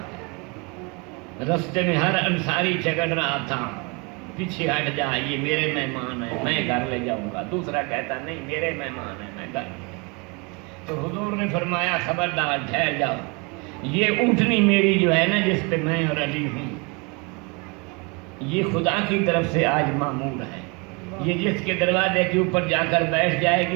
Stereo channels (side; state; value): left; quieter; 29.8 dB